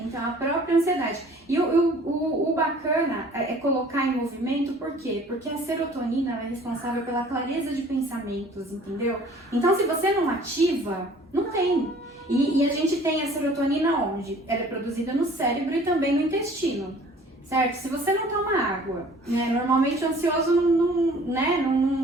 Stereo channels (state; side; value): normal; both; correlation 0.51